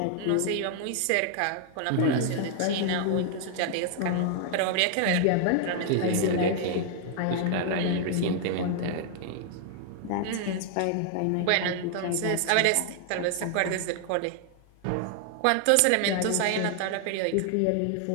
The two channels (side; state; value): both; different; correlation 0.00